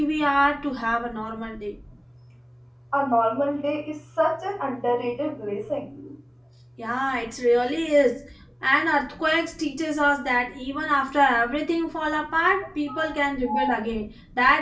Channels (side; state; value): both; identical; correlation 1.00